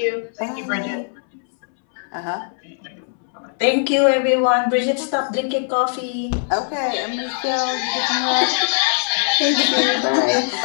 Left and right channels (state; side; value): silent; right; 65 dB below the other